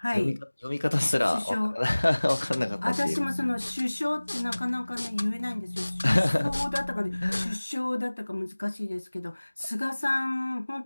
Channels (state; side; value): inverted; both; correlation -1.00